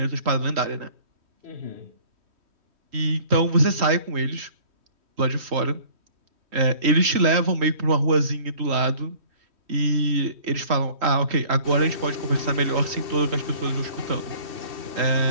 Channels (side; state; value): left; late; 3.8 ms